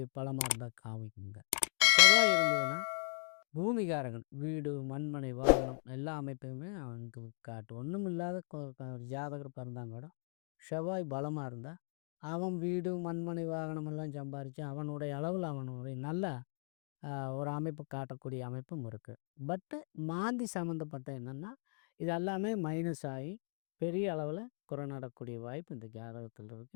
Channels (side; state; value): right; silent; 52 dB below the other